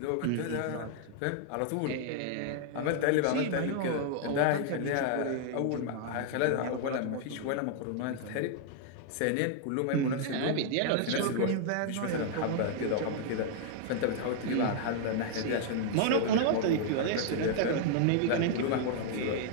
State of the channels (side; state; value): both; different; correlation 0.00